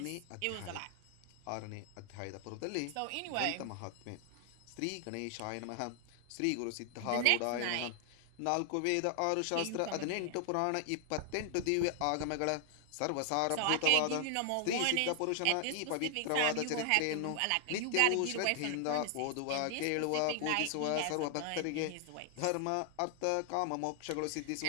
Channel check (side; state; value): both; different; correlation 0.00